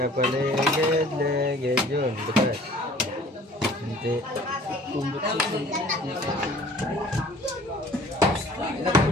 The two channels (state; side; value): normal; both; correlation 0.51